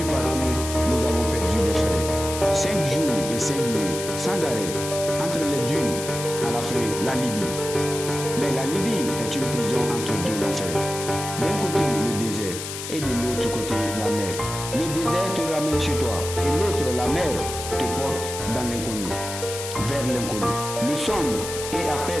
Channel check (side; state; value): left; noise; hiss, 7 dB below the sound